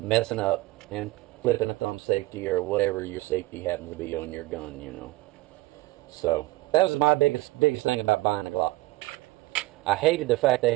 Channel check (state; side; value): quieter; left; 19.4 dB